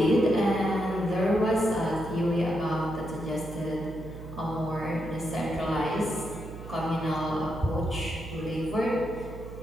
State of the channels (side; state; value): right; noise; hum, 12 dB below the sound